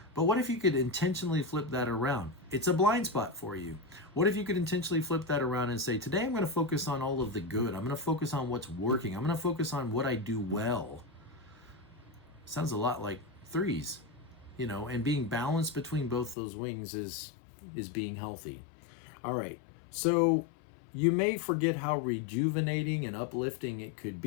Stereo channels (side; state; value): right; drops out; at 16.4 s